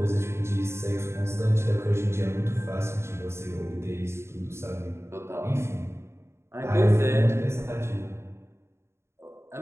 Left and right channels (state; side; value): late; left; 0.13 ms